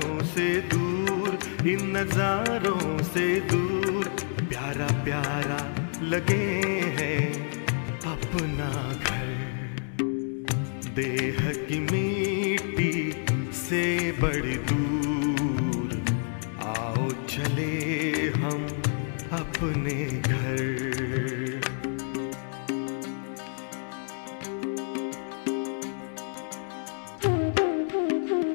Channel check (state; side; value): silent; right; 59 dB below the other